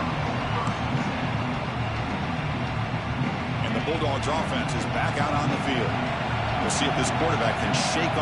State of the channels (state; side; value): identical; both; correlation 1.00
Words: And the Bulldogs offense is back out on the field. We'll see if this quarterback can shake